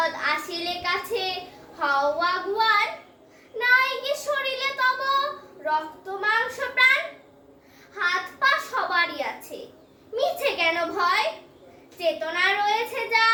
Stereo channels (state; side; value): identical; both; correlation 1.00